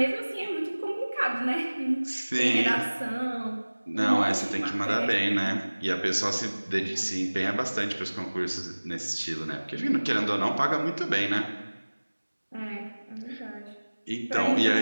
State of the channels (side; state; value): both; inverted; correlation -1.00